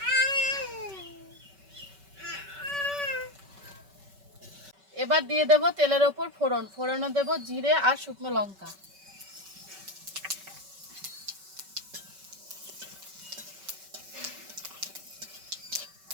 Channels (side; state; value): left; late; 5.2 ms